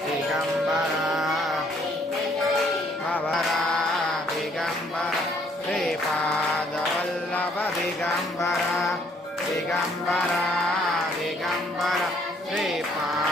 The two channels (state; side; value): normal; both; correlation 0.65